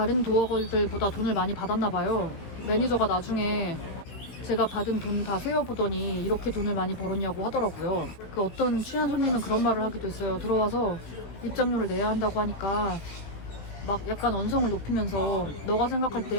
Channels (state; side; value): late; right; 18 ms